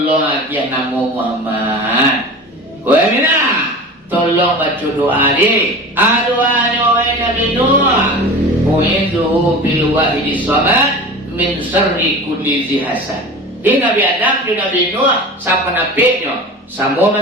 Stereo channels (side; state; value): both; normal; correlation 0.34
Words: dia namo Muhammad. Wah Mina. Tolong baca doa di. Doa Nabi Nuh. Mu'idzuhu bil wahidi samad min syarri kulli dzi hasad. Di Nabi Adam, di Nabi Nuh, siapa nabinya? Samo